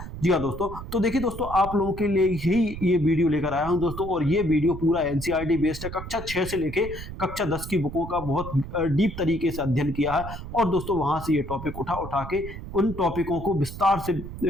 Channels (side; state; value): right; noise; rumble, 10 dB below the sound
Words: जी हाँ दोस्तों, तो देखिए दोस्तों आप लोगों के लिए ही ये वीडियो लेकर आया हूं दोस्तों, और ये वीडियो पूरा एनसीईआरटी बेस्ड है। कक्षा 6 से लेके कक्षा 10 की बुकों का बहुत डीप तरीके से अध्ययन किया है, और दोस्तों वहां से ये टॉपिक उठा के उन टॉपिकों को विस्तार से